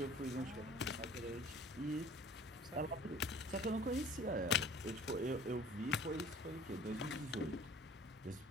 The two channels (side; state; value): both; normal; correlation 0.48